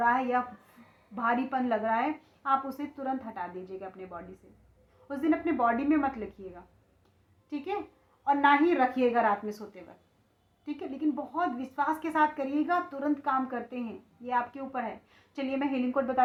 है या भारीपन लग रहा है, आप उसे तुरंत हटा दीजिएगा अपने बॉडी से। उस दिन अपने बॉडी में मत लिखिएगा, ठीक है, और ना ही रखिएगा रात में सोते वक्त, ठीक है। लेकिन बहुत विश्वास के साथ करिएगा, तुरंत काम करते हैं, ये आपके ऊपर है। चलिए मैं हीलिंग कोड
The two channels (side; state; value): both; identical; correlation 1.00